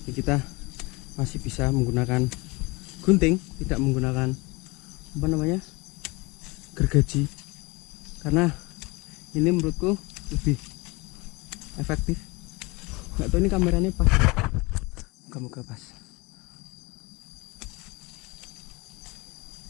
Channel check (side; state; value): right; quieter; 25.0 dB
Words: Jadi kita masih bisa menggunakan gunting, tidak menggunakan apa namanya, gergaji, karena ini menurutku lebih efektif. Nggak tahu ini kameranya pas, moga-moga pas.